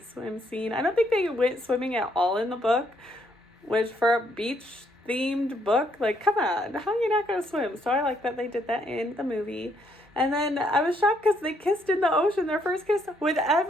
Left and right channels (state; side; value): normal; both; correlation 0.71